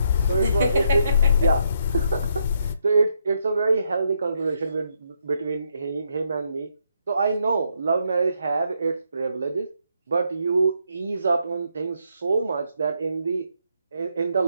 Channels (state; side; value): inverted; both; correlation -0.76